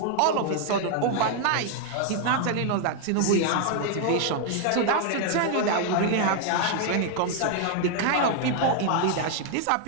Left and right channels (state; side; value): different; both; correlation 0.00